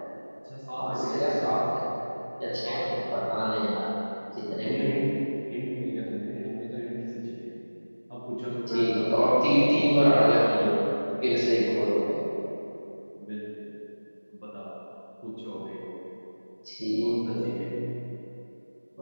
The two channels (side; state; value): both; inverted; correlation -1.00